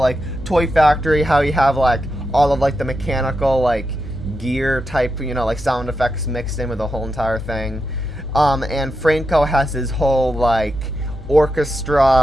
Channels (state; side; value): normal; both; correlation 0.87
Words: Toy Factory, how you have like all of like the mechanical like gear type, like sound effects mixed in with the whole entire thing. And Franco has his whole like